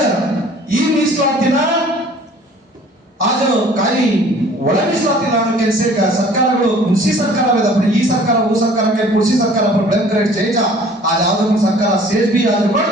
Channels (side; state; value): both; normal; correlation 0.51